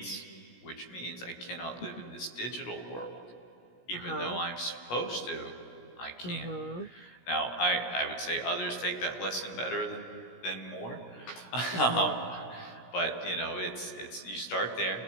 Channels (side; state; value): right; late; 17 ms